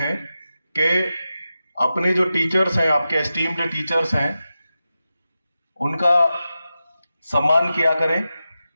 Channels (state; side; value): inverted; both; correlation -0.92